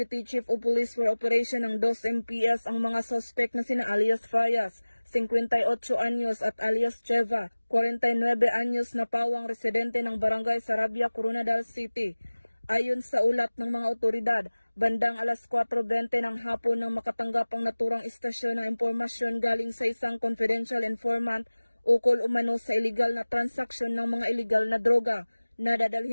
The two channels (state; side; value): inverted; both; correlation -1.00